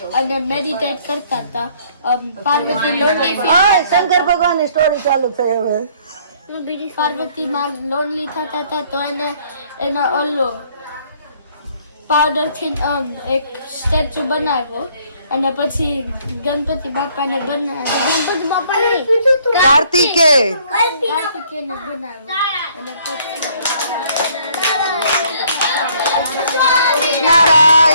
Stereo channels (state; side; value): inverted; both; correlation -0.62